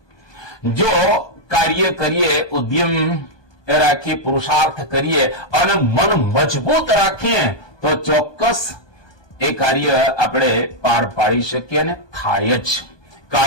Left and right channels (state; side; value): late; right; 1.2 ms